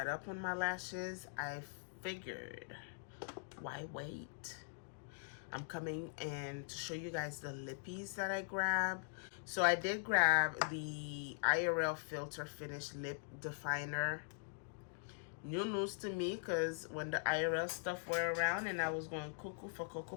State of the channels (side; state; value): right; silent; digital silence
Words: up on my lashes, I figured, why wait? I'm coming in to show you guys the lippies that I grabbed. So I did grab the IRL Filter Finish Lip Definer. New news to me, because when the IRL stuff were around and I was going cuckoo for Cocoa